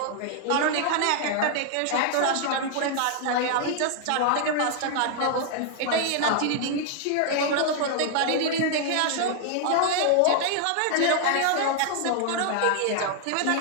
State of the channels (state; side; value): different; both; correlation 0.00